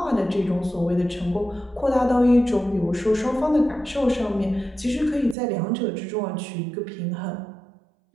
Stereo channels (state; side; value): drops out; left; at 5.4 s